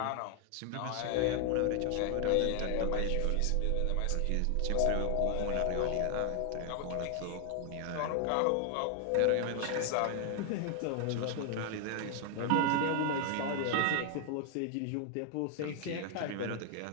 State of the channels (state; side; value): different; both; correlation 0.00